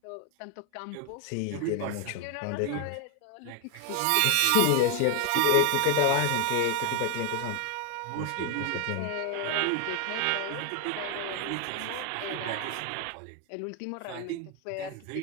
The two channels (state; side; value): different; both; correlation 0.00